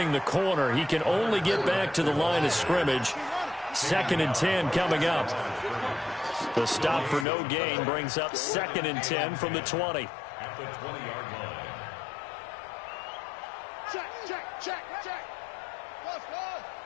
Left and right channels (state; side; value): drops out; right; at 7.2 s